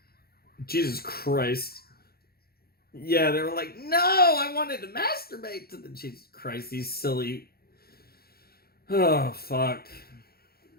Jesus Christ. Yeah, they were like, no, I wanted to masturbate to the... Jesus Christ, these silly... Oh, fuck.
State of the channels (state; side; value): late; right; 0.45 ms